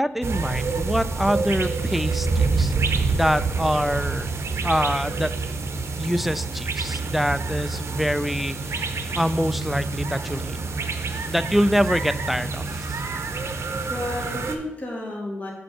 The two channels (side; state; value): both; normal; correlation 0.86